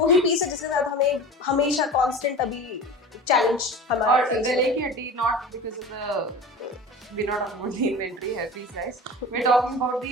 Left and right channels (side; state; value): both; normal; correlation 0.34